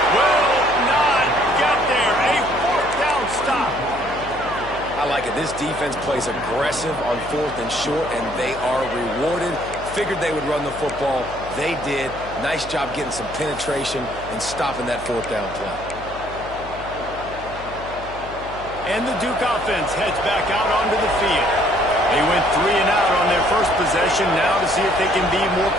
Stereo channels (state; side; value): noise; left; hum, 15 dB below the sound